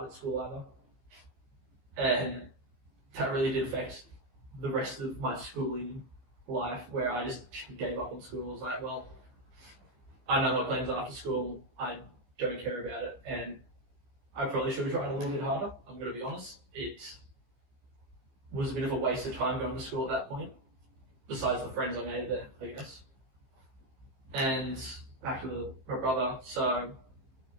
at school either. And that really did affect the rest of my schooling life, where I just gave up on school. I was like, well, I know my plans after school. I don't care about it, and I probably should have tried a little bit harder. I'm going to be honest. It was a bit of a waste of time going to school at that point, besides the friends I made there, I guess. And back to my brother. So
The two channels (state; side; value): late; left; 15 ms